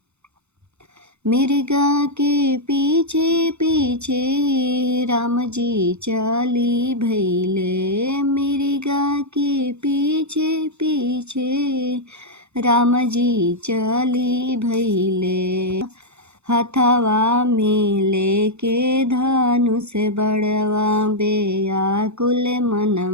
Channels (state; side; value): late; left; 0.81 ms